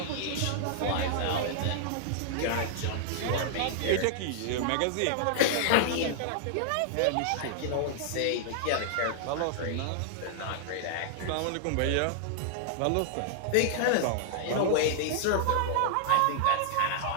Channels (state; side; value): different; both; correlation -0.01